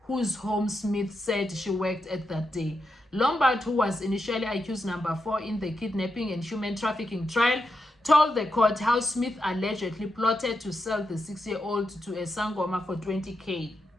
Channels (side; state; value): both; normal; correlation 0.86